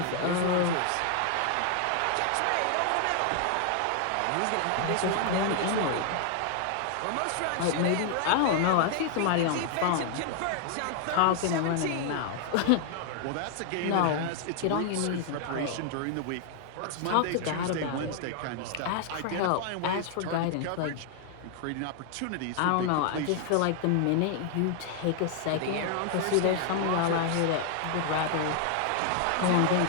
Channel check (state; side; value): different; both; correlation 0.00